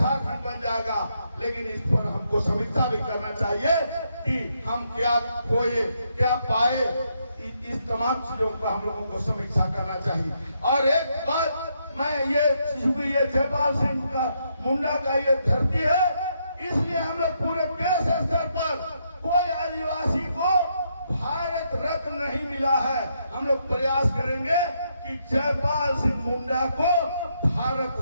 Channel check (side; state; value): both; inverted; correlation -0.77